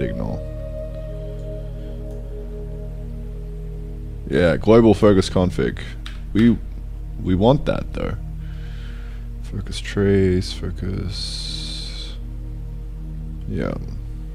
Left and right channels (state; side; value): identical; both; correlation 1.00